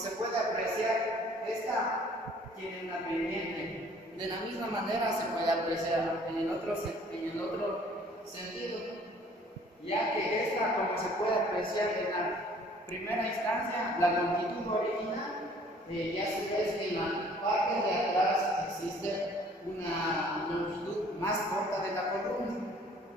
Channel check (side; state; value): both; normal; correlation 0.55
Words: puede apreciar, esta tiene una pendiente. De la misma manera se puede apreciar en el otro sentido, ya que esta, como se puede apreciar en la primera instancia, la longitud original, y a su vez en la parte de atrás existe una longitud más corta de la columna.